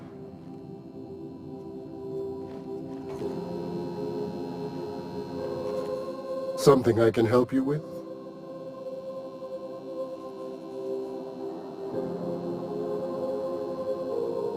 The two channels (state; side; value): identical; both; correlation 1.00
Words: Something I can help you with?